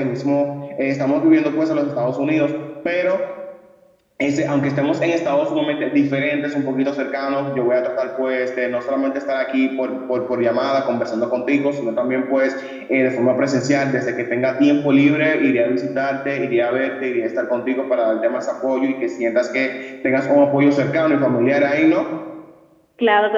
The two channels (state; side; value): identical; both; correlation 1.00